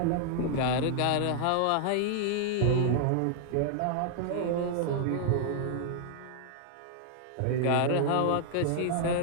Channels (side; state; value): both; different; correlation -0.01